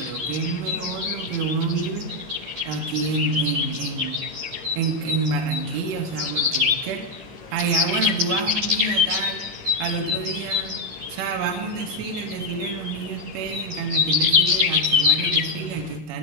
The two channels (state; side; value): late; left; 12 ms